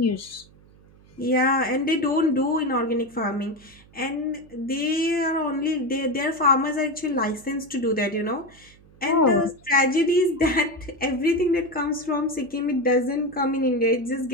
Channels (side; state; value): right; noise; hum, 26 dB below the sound